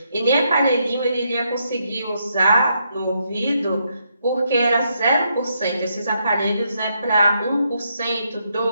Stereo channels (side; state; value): both; inverted; correlation -0.78